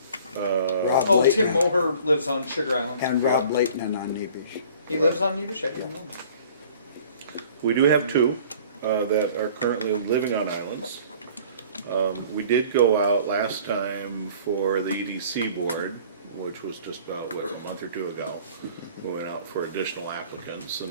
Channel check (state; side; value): inverted; both; correlation -0.50